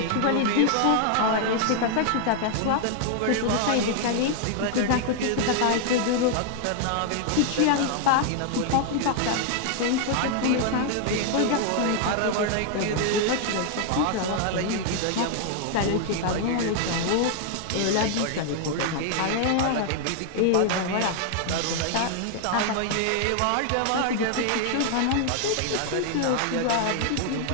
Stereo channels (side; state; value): both; different; correlation 0.00